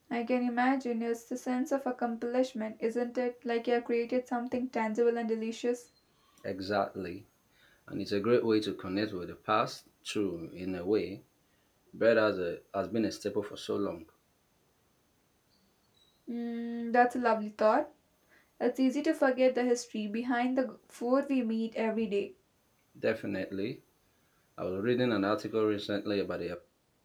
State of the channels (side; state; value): both; identical; correlation 1.00